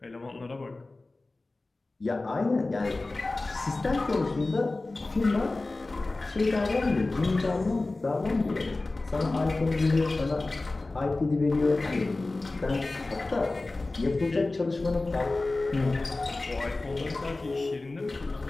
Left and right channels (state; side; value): quieter; right; 3.2 dB